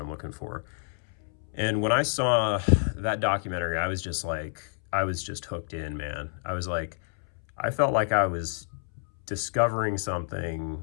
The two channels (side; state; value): right; silent; 59 dB below the other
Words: looking for. And when I saw that documentary, I was just hooked in, man. I felt like I was discovering